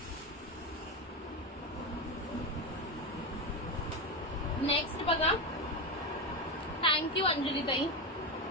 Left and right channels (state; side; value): normal; both; correlation 0.14